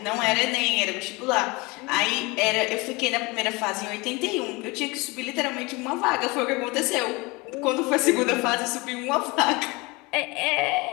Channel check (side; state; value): right; quieter; 25.1 dB